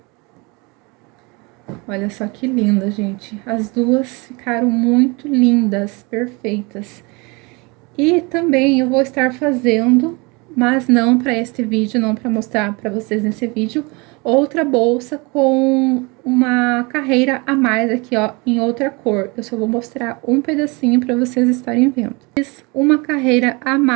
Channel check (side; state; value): left; quieter; 27.6 dB